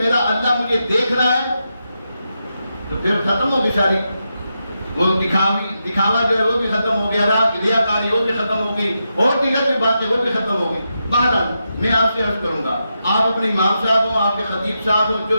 اللہ مجھے دیکھ رہا ہے، تو پھر ختم ہوگی ساری وہ دکھاوا جو ہے وہ بھی ختم ہو گیا، ریاکاری وہ بھی ختم ہو گئی، اور دیگر بھی باتیں وہ بھی ختم ہو گئی. بہرحال میں آپ سے عرض کروں گا، آپ اپنے امام صاحب ہوں، آپ کے خطیب صاحب ہوں، جو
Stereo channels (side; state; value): both; inverted; correlation -0.86